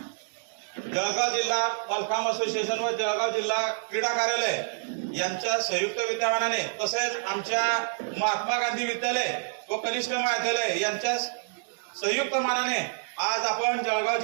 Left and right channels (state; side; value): silent; left; digital silence